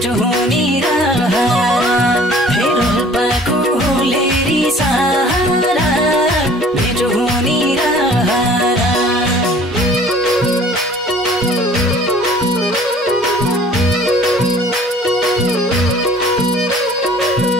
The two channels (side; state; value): both; normal; correlation 0.51